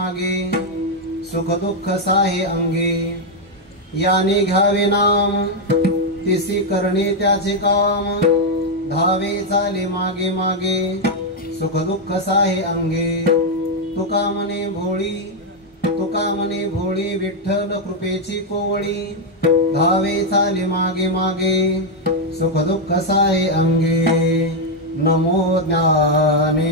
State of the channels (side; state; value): both; normal; correlation 0.01